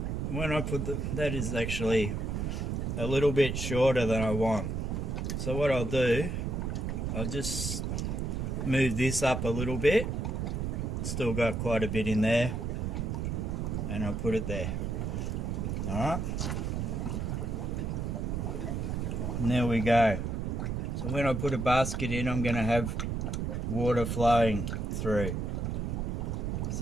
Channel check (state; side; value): noise; right; rumble, 1 dB below the sound